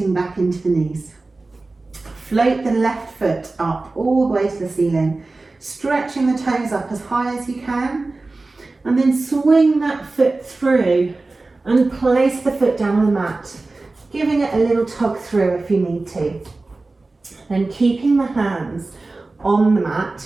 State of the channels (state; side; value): quieter; left; 3.4 dB